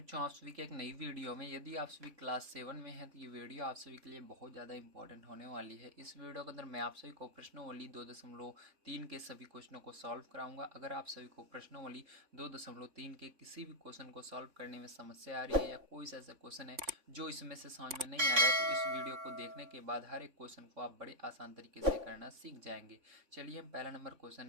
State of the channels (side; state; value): left; late; 3.5 ms